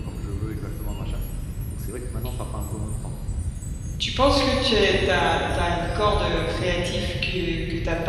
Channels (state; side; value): identical; both; correlation 1.00